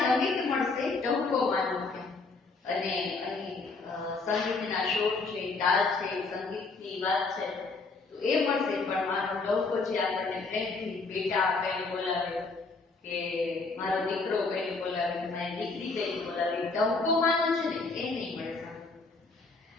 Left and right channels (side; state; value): right; quieter; 3.9 dB